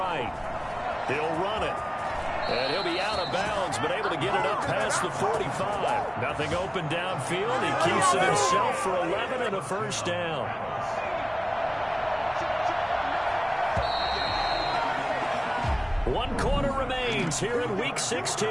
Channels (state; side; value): identical; both; correlation 1.00